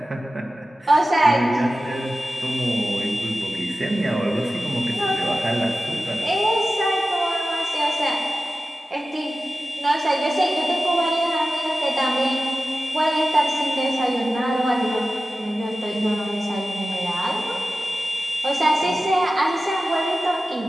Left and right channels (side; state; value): both; normal; correlation 0.95